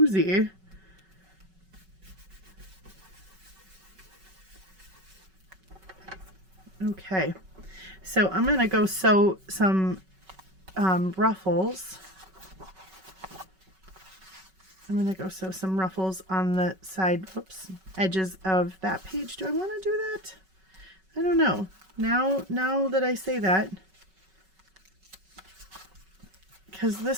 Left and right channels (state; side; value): late; left; 5.3 ms